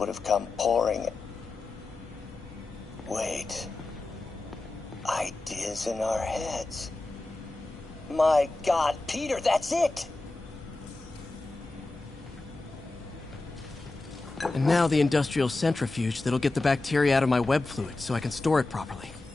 have come pouring. Wait. Ideas in our heads. My God, Peter, that's it! And now the industrial centrifuge that'll get the bacteria out of my web fluid so I can store it properly.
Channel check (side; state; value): right; quieter; 3.1 dB